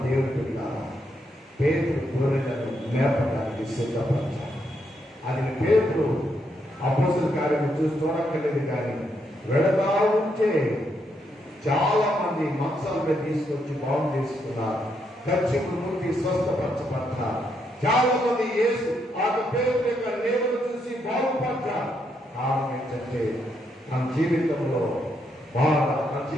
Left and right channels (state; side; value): normal; both; correlation 0.78